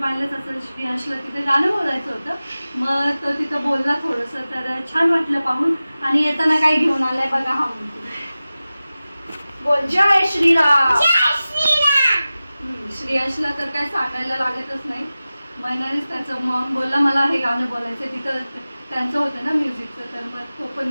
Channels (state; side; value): inverted; both; correlation -0.96